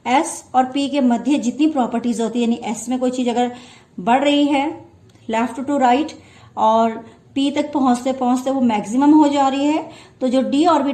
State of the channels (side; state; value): both; identical; correlation 1.00